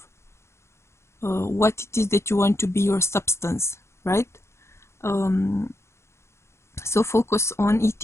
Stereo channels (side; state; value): right; late; 0.13 ms